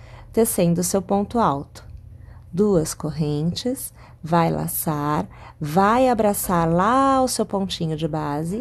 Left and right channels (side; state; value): both; identical; correlation 1.00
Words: tecendo o seu ponto alto. 2 correntes, vai laçar, vai abraçar lá o seu pontinho de base,